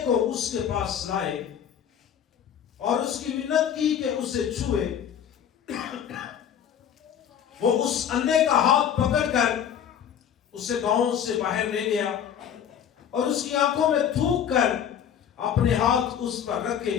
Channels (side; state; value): right; quieter; 8.9 dB